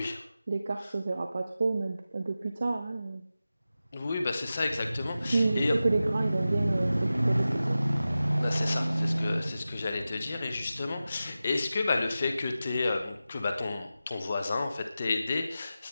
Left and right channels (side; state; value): both; inverted; correlation -0.94